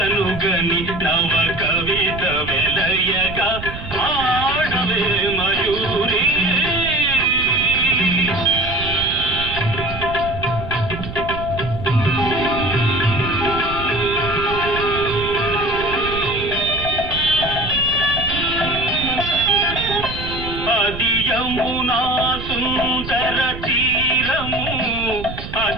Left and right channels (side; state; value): right; noise; rumble, 9 dB below the sound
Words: గని నవ కవిత వెలయగా ఆడవే మయూరి యమునా సుందర తీరము